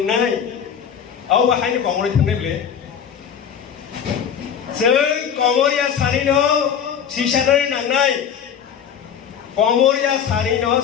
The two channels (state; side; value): quieter; right; 8.0 dB